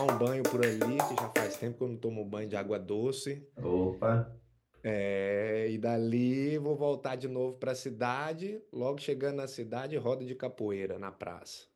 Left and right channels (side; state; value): both; identical; correlation 1.00